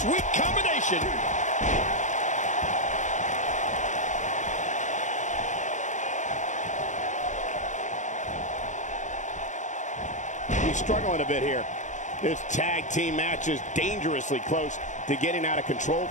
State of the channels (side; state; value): right; late; 0.35 ms